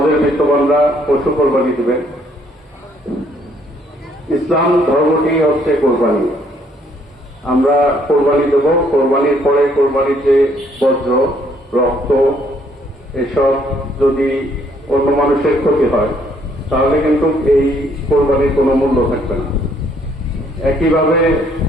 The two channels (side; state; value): both; normal; correlation 0.67